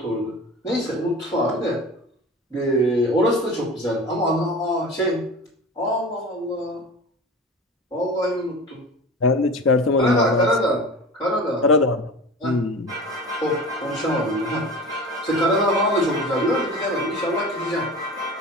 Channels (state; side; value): normal; both; correlation 0.35